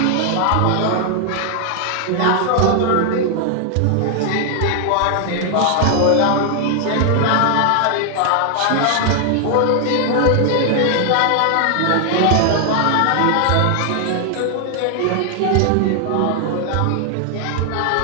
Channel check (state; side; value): different; both; correlation 0.00